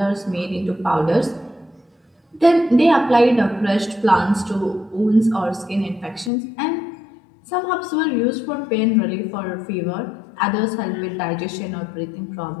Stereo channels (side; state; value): right; drops out; at 6.3 s